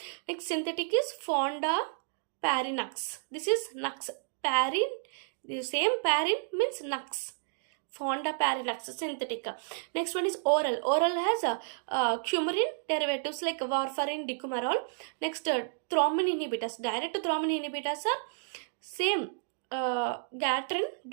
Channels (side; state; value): left; silent; digital silence